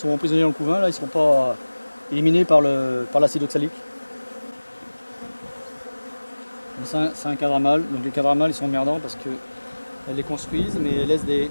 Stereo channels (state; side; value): inverted; both; correlation -1.00